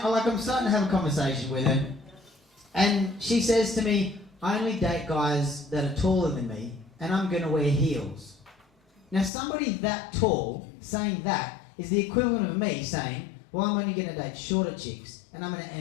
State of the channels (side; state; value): right; drops out; at 9.3 s